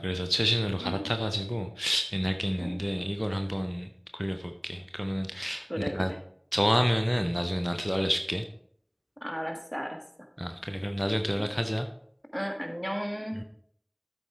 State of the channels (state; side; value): identical; both; correlation 1.00